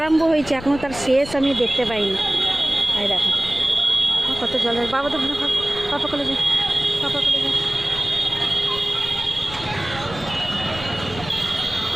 হয়েছে এখনও তার শেষ আমি দেখতে পাইনি। এই দেখো কত জল। বাবা তো পাপা কলে যায়, পাপা কলে যায়।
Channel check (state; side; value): noise; left; rumble, 14 dB below the sound